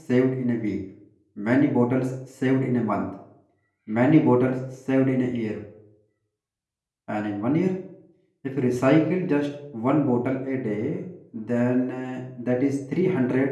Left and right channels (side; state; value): both; identical; correlation 1.00